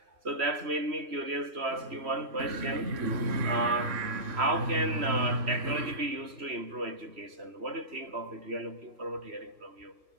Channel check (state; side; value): late; left; 3.1 ms